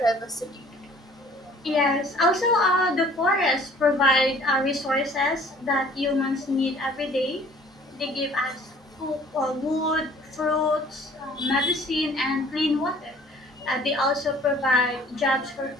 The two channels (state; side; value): normal; both; correlation 0.53